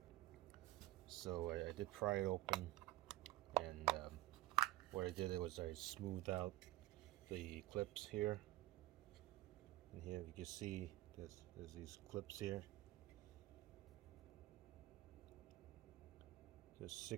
So I did pry it open, and what I did was I smoothed out the clips here. And here you can see there's these clips here. There's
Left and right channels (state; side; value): quieter; left; 17.2 dB